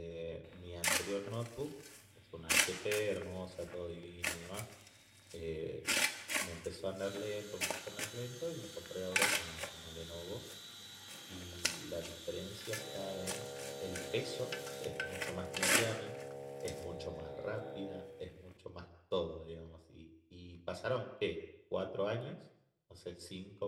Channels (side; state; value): both; identical; correlation 1.00